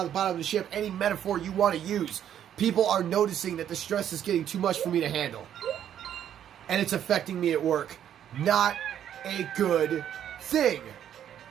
of the bottom of the ship. Any metaphor you want to use. People are noticing that the stress is getting too much for me to handle. And it's affecting me at work. Not a good thing.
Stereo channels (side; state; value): left; quieter; 10.1 dB